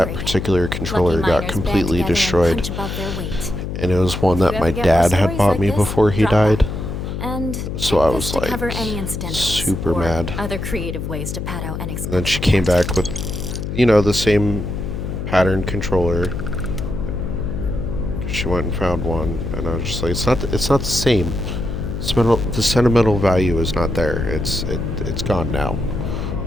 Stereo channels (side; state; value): left; noise; hum, 5 dB below the sound